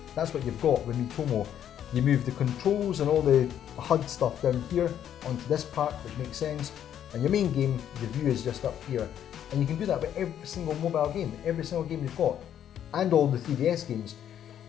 that's what you've got with Miitomo. You move the controls and all the HUD stuff down here onto this part, which makes sense, and your main game, the view is just up here. And you can do that with every single mobile game, every single game you've got, and all the 3DS games.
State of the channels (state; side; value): quieter; right; 10.0 dB